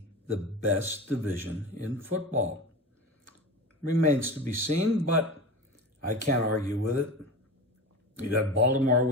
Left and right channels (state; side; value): normal; both; correlation 0.29